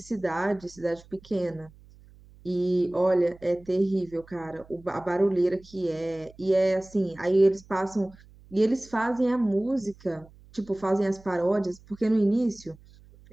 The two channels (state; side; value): noise; right; hum, 24 dB below the sound